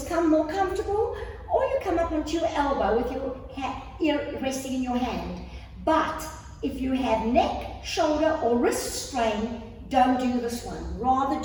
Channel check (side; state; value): both; identical; correlation 1.00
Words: more comfortable, or you come up onto your elbow with your ear resting in your hand. But if you have neck, shoulder, or wrist strain, don't do this one. Rather